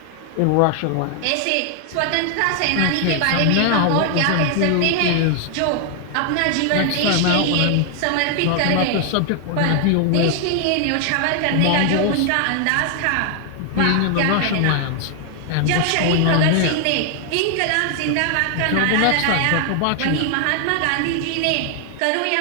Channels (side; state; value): both; different; correlation 0.00